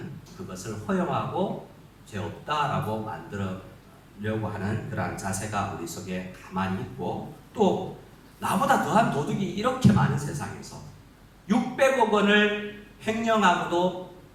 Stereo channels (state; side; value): identical; both; correlation 1.00